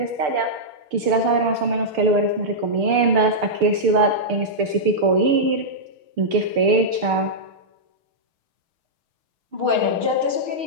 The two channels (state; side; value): late; left; 6.7 ms